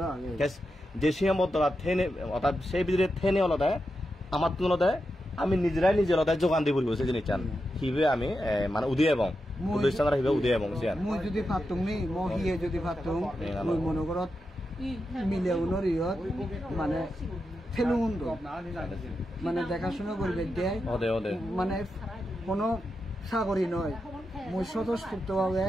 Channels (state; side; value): normal; both; correlation 0.88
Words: যে সীমাবদ্ধতা থেনে অর্থাৎ সেই ভিতরে থেনে হলতে আমার তুলতে আমি নিজেরাই নিজের যোগান দিব সেই জিনিস চান হিবে আমি মানে উদয় এবং প্রতিষ্ঠানরা হিবে উদয় এবং মই যদি ফাতুং নি মই হিয়ে যদি ফাতুং মই মনে করত মিলে উনরিয়ত মানে ফেলুন মানে দেখাশোনা করবে দেয় মানে কোনো সাগরী নয় মই স্বতঃস্ফূর্তভাবে